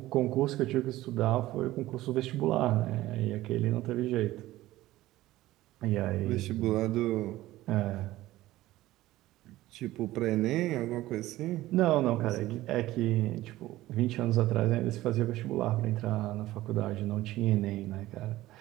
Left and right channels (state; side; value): quieter; left; 16.3 dB